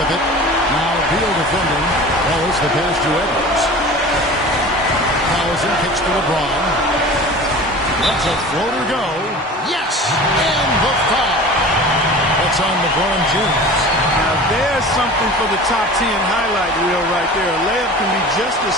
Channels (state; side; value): normal; both; correlation 0.38